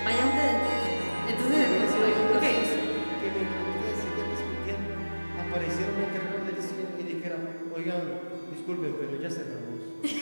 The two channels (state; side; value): inverted; both; correlation -1.00